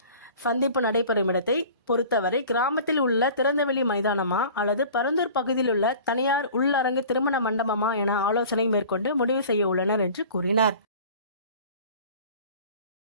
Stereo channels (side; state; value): both; inverted; correlation -0.43